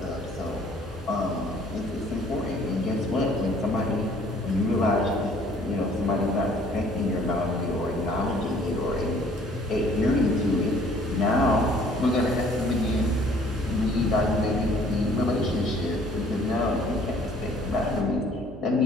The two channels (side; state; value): both; normal; correlation 0.57